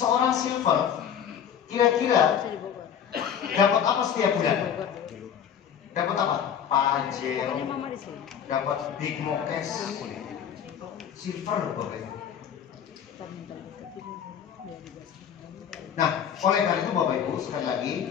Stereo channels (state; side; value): quieter; right; 8.6 dB